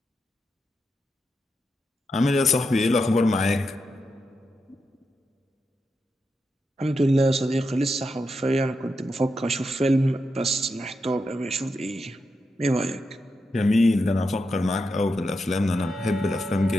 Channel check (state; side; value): normal; both; correlation 0.86